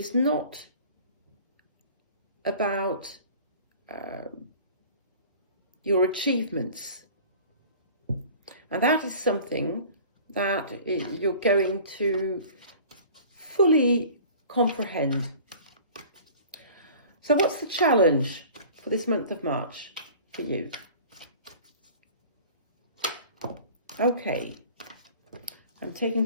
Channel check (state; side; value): inverted; both; correlation -0.44